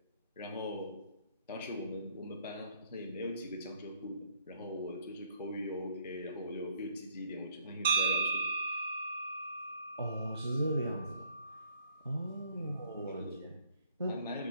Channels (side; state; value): both; inverted; correlation -0.65